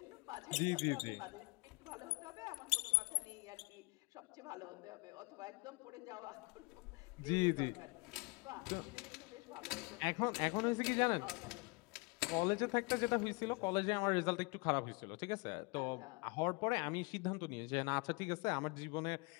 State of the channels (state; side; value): quieter; right; 28.3 dB